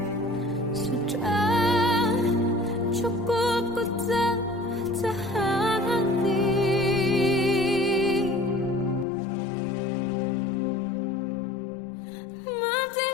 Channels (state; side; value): drops out; right; at 9.1 s